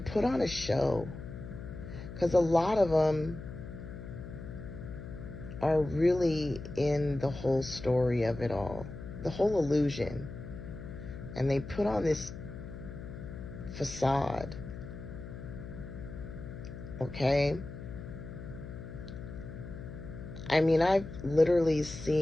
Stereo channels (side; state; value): left; noise; hum, 11 dB below the sound